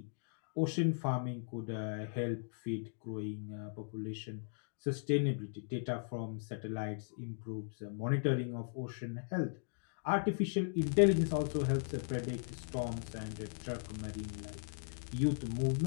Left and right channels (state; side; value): silent; right; digital silence